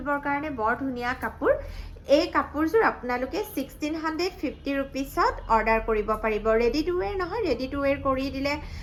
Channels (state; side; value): identical; both; correlation 1.00